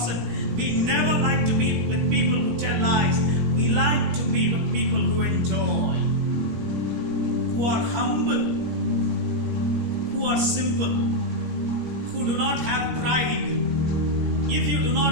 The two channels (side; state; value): left; late; 17 ms